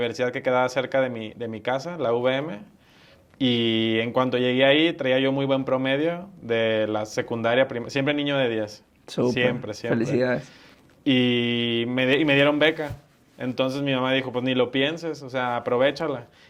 que quedaba cerca de mi casa, la UVM, y en cuanto llegué ahí traía yo muy buen promedio de la secundaria, siempre niño de 10. Súper. Siempre, siempre. Felicidades. y me dieron beca. Entonces mi mamá dijo, pues ni lo pienses, o sea, aprovéchala.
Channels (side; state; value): both; identical; correlation 1.00